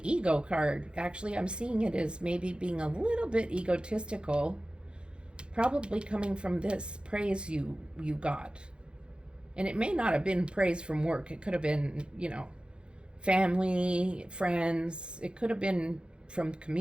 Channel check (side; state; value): left; late; 0.054 ms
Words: ego card. Actually, I'm seeing it as maybe being a little bit egotistical, probably coming from this praise you got. And it may not have been praise from work. It could have been, family, friends. It could have been from